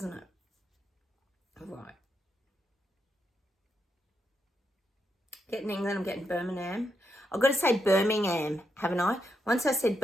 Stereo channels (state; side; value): normal; both; correlation 0.82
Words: it? Right. Getting England, I'm getting Birmingham. I've got to say Birmingham, haven't I? Once I said